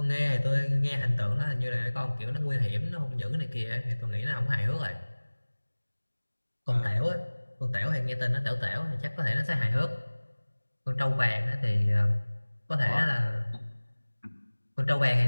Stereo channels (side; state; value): both; inverted; correlation -1.00